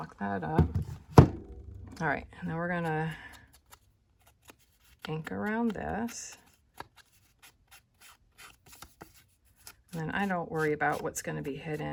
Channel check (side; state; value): both; identical; correlation 1.00